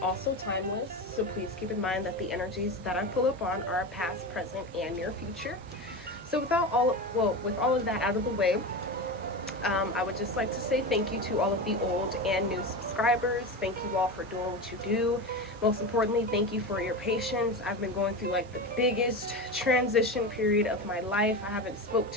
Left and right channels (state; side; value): normal; both; correlation 0.22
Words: also timeless. So please keep in mind that the energies that I pull up on are past, present, and near future. So with all of that out of the way, I would just like to say thank you to all of the old and new subscribers. Thank you all for doing what you do. Most importantly, thank you for your patience. I've been going through like the biggest transition period of my life. I haven't spoke